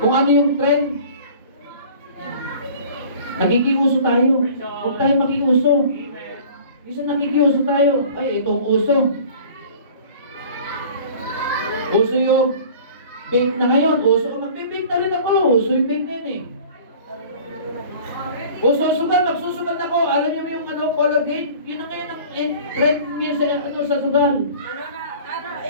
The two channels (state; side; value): inverted; both; correlation -0.45